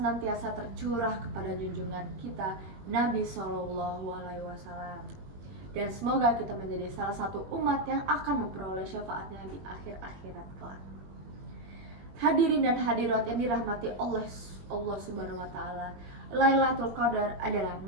tercurah kepada junjungan kita Nabi Shallallahu Alaihi Wasallam. Dan semoga kita menjadi salah satu umat yang akan memperoleh syafaatnya di akhir akhirat kelak. Hadirin dan hadirat yang dirahmati Allah Subhanahu wa Ta'ala, Lailatul Qadar adalah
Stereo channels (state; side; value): late; left; 21 ms